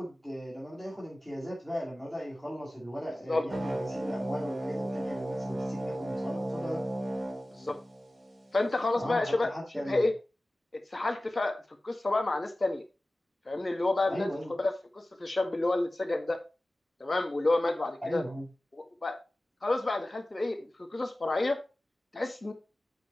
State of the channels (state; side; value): normal; both; correlation 0.97